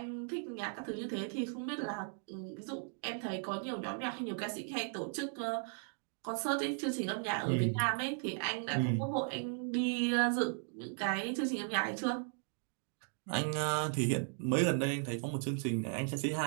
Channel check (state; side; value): silent; left; 53 dB below the other